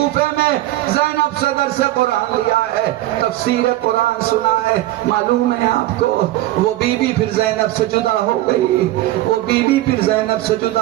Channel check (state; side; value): quieter; left; 15.8 dB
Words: میں زینب سے درس قرآن لیا ہے، تفسیر قرآن سنا ہے۔ معلوم ہے آپ کو وہ بی بی پھر زینب سے جدا ہو گئی، وہ بی بی پھر زینب سے